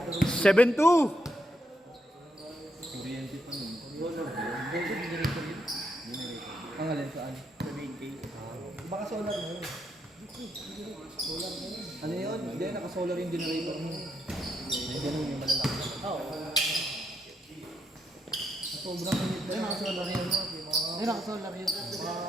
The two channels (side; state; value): both; normal; correlation 0.79